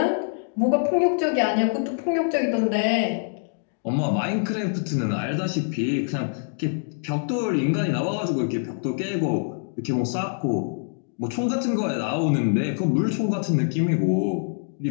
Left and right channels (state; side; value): silent; right; digital silence